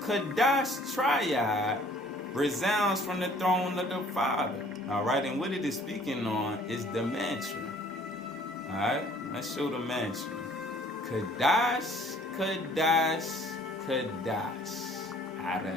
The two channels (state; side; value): normal; both; correlation 0.56